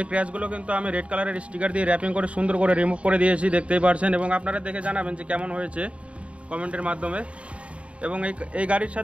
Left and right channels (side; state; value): left; late; 0.062 ms